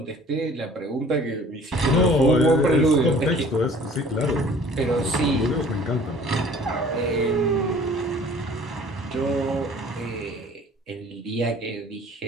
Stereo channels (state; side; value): normal; both; correlation 0.50